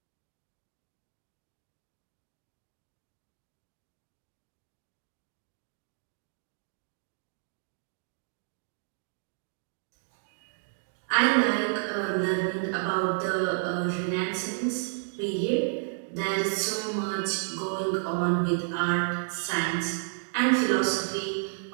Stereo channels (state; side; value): silent; left; digital silence